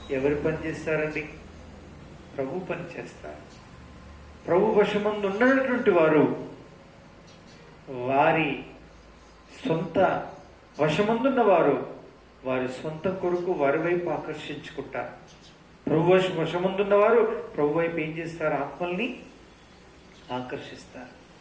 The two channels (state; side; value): identical; both; correlation 1.00